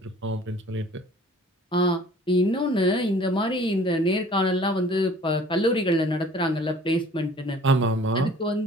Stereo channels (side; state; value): both; normal; correlation 0.51